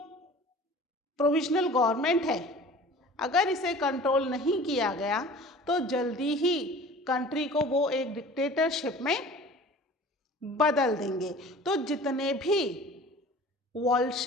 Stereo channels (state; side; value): normal; both; correlation 0.43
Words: प्रोविजनल गवर्नमेंट है अगर इसे कंट्रोल नहीं किया गया तो जल्दी ही कंट्री को वो एक डिक्टेटरशिप में बदल देंगे। तो जितने भी